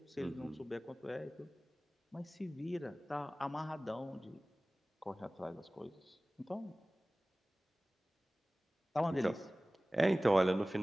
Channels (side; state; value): both; normal; correlation 0.98